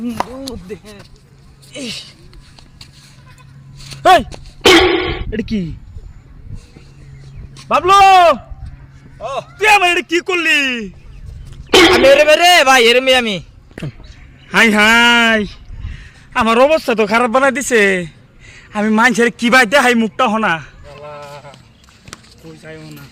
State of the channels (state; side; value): identical; both; correlation 1.00